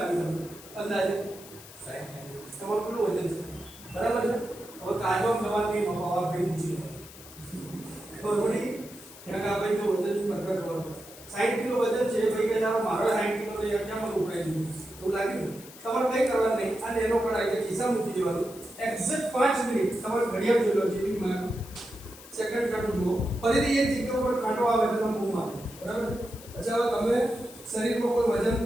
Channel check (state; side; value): noise; left; hiss, 18 dB below the sound